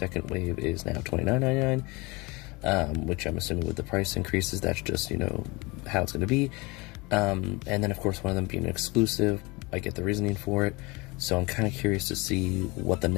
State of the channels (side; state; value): right; quieter; 25.2 dB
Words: wave is now $29.99, which I'm assuming with the price increases, that's just, how it's going to be. And then, of course, one of them being exclusive, I get the reasoning for it. So I'm kind of curious to see what the